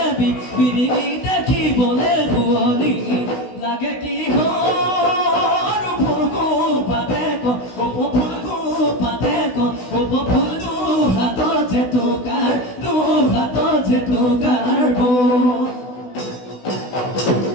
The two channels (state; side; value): late; right; 16 ms